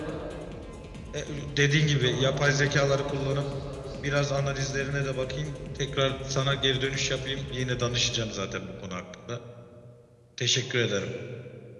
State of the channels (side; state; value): both; identical; correlation 1.00